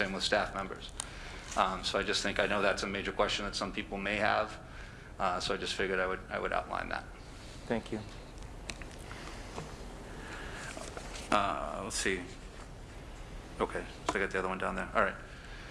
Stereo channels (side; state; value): both; identical; correlation 1.00